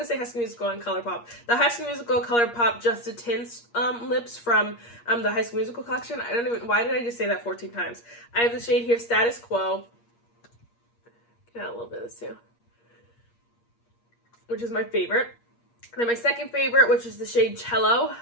to say High School Musical and ColourPop. The High School Musical ColourPop Just a Tints lips from the High School Musical collection. Why did I just say that 14 times? I have the shade here, Status Quo. Get out a little bit of this too. Which is my favorite. Then my second favorite, which is the shade Cello,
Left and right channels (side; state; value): right; late; 8.5 ms